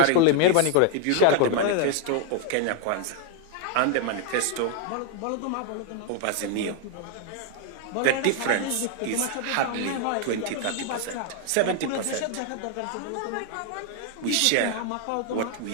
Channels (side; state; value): both; different; correlation 0.00